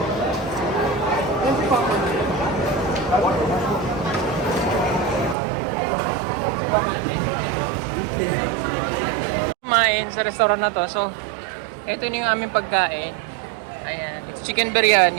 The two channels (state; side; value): drops out; left; at 5.4 s